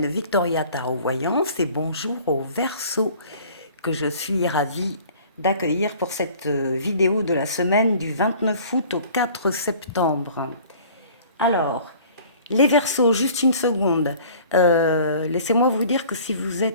Victoria Tarot Voyance et bonjour aux Verseaux que je suis ravie d'accueillir pour cette vidéo de la semaine du 29 août au 4 septembre. Alors, les Verseaux, juste une seconde. Laissez-moi vous dire que si vous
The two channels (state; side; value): inverted; both; correlation -0.49